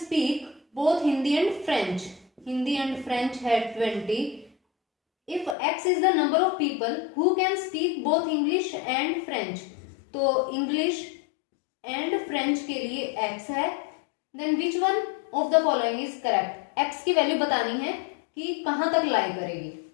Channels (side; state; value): right; drops out; at 5.6 s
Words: both Hindi and French, Hindi and French है 20। If x is the number of people who can speak both English and French, तो English and French के लिए x है, then which one of the following is correct? x की value बतानी है कि कहां तक लाई करेगी।